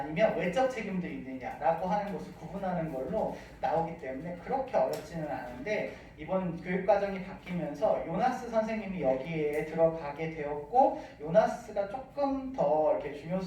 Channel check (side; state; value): both; identical; correlation 1.00